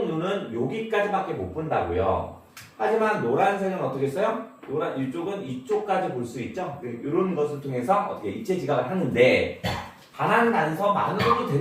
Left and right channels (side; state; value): both; identical; correlation 1.00